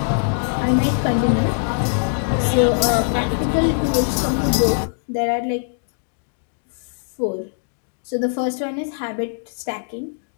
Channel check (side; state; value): right; silent; digital silence